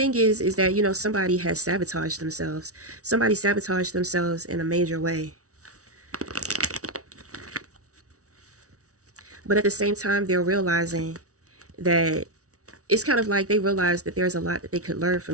is that, somebody has sabotaged themselves. Somebody sabotaged themselves in a major way. But at the same time, they're realizing that it's kind of like they realize that there's a lot that they could learn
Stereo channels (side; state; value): left; late; 0.66 ms